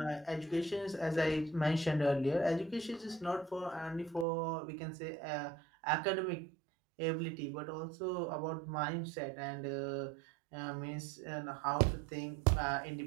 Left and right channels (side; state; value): left; drops out; at 4.2 s